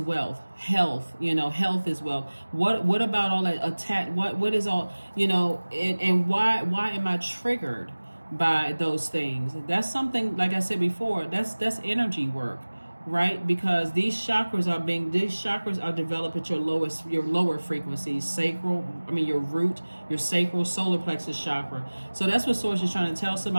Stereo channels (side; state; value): both; inverted; correlation -1.00